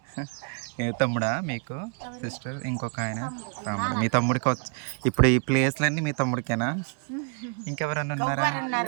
ఏ తమ్ముడా మీకు సిస్టర్? ఇంకొక ఆయన తమ్ముడు. మీ తమ్ముడికి వచ్చి ఇప్పుడు ఈ ప్లేస్లన్నీ మీ తమ్ముడికేనా? ఇంకెవరన్నా ఉన్నారా?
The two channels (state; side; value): quieter; left; 38.7 dB